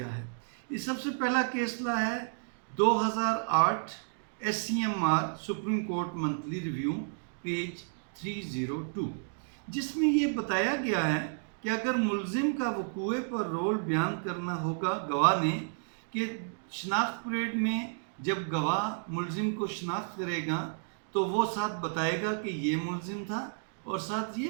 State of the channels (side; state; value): left; silent; digital silence